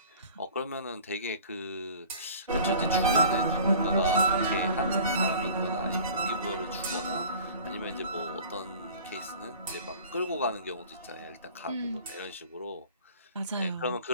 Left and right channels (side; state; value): both; inverted; correlation -0.45